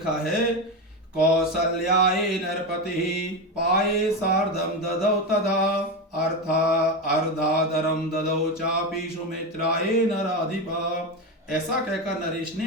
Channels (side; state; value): both; normal; correlation 0.15